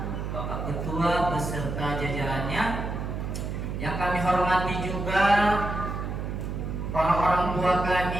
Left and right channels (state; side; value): noise; right; hum, 4 dB below the sound